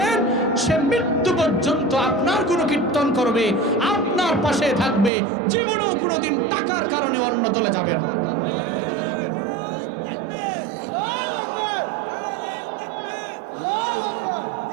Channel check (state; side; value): drops out; left; at 5.1 s